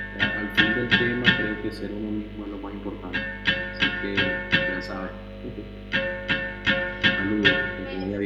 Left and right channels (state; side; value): identical; both; correlation 1.00